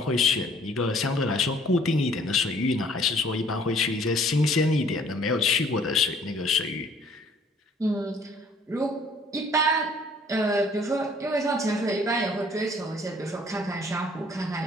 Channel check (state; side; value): normal; both; correlation 0.58